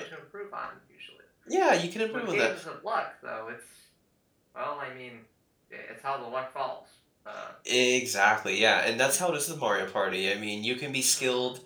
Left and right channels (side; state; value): both; identical; correlation 1.00